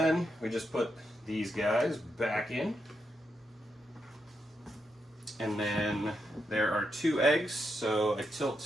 we just put these guys back in. And then there are 2 eggs, so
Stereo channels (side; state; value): both; normal; correlation 0.83